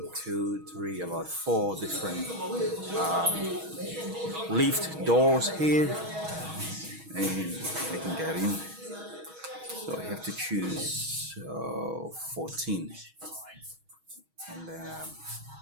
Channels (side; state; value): left; late; 6.3 ms